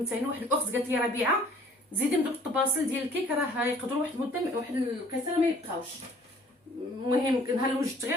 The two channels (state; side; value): normal; both; correlation 0.55